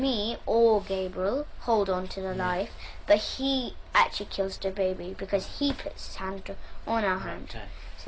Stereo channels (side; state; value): both; identical; correlation 1.00